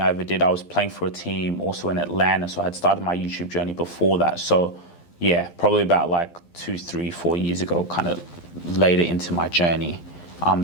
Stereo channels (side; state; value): right; late; 12 ms